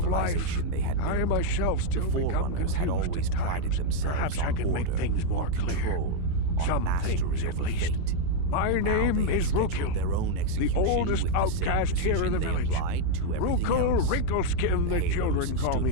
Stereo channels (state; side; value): different; both; correlation 0.00